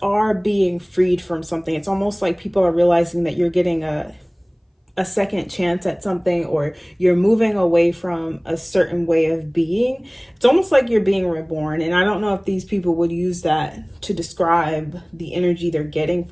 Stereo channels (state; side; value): identical; both; correlation 1.00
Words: are being freed from something. It's almost like people are realizing that you're getting a second chance at something, or you're moving away from a certain way of being. It's almost like you're being reborn. And I don't know if these people would use that to describe the energy they're getting